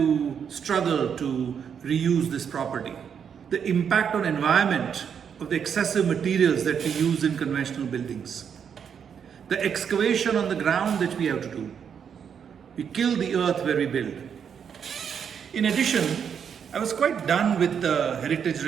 struggle to reuse this property, the impact on environment of the excessive materials that we use in conventional buildings, the excavation on the ground that we have to do. We kill the earth where we build. In addition, I was quite done with the heritage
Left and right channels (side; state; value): left; quieter; 7.5 dB